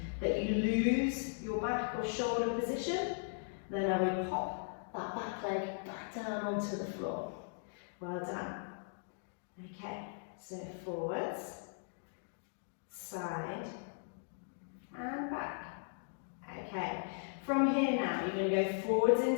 that you lose your back or shoulder position, then I will pop that back leg back down onto the floor. Well done. Okay, so forwards, side, and back. Okay, from here now, you're going to go forwards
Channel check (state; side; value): silent; right; digital silence